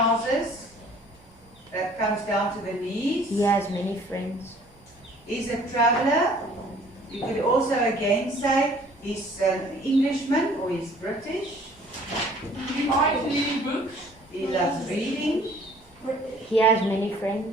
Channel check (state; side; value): normal; both; correlation 0.54